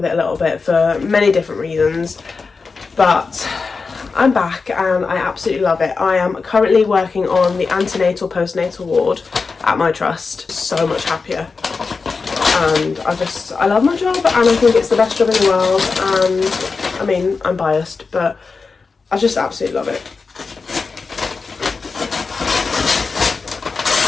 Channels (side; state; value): right; quieter; 4.6 dB